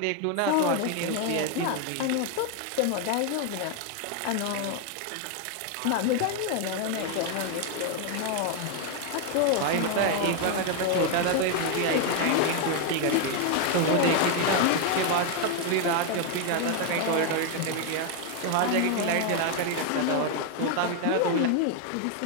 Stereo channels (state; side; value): different; both; correlation 0.01